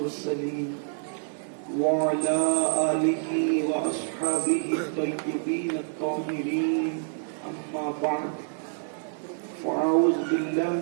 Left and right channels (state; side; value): silent; left; digital silence